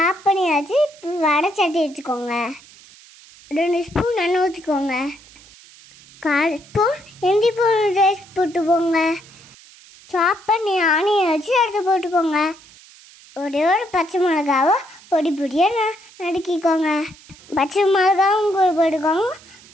பண்ணியாச்சு. வடை சட்டி வச்சுக்கோங்க. 2 ஸ்பூன் எண்ணெய் ஊற்றிக்கோங்க. 1/4 ஸ்பூன் இஞ்சி பூண்டு பேஸ்ட் போட்டுக்கோங்க. சாப் பண்ணி ஆனியன் வச்சு எடுத்து போட்டுக்கோங்க. ஒரே ஒரு பச்சை மிளகாவை பொடி பொடியாக நறுக்கிக்கோங்க. பச்சை மிளகாவும் கூட போட்டுக்கோங்க.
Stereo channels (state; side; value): noise; right; hiss, 23 dB below the sound